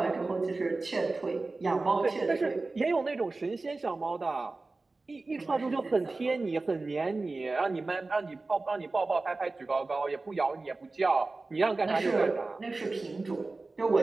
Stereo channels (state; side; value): quieter; left; 3.4 dB